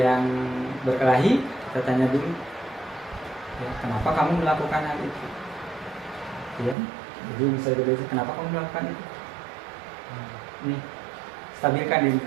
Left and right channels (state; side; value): drops out; left; at 6.8 s